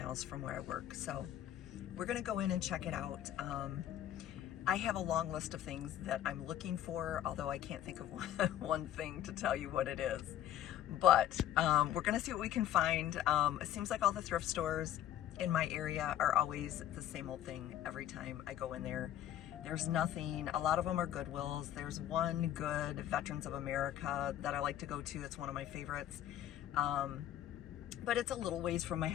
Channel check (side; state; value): right; quieter; 11.6 dB